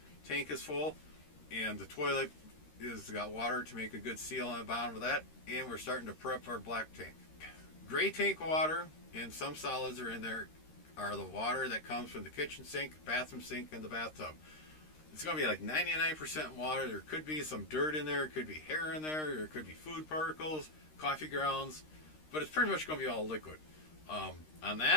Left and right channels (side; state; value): right; late; 13 ms